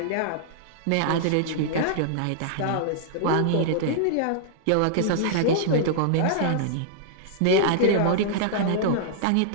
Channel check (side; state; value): both; different; correlation -0.01